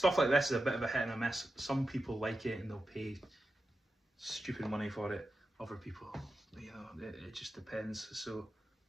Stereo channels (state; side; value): normal; both; correlation 0.91